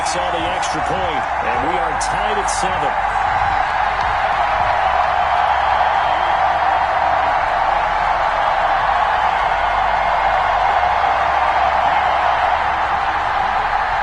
on the extra point, and we are tied at 7.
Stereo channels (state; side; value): identical; both; correlation 1.00